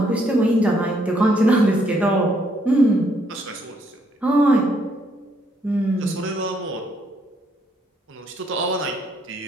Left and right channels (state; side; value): normal; both; correlation 0.71